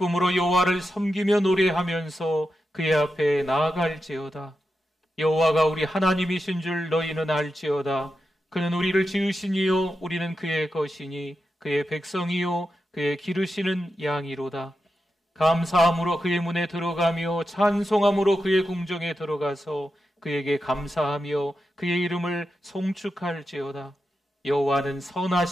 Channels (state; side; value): normal; both; correlation 0.89